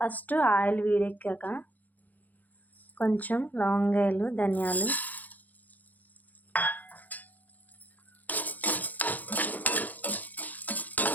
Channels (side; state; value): right; late; 0.082 ms